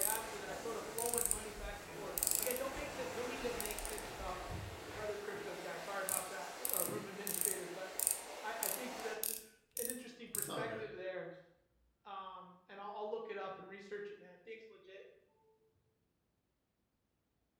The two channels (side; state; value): both; identical; correlation 1.00